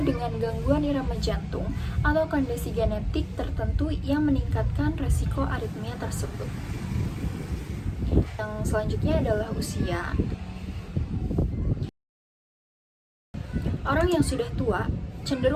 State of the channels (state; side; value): identical; both; correlation 1.00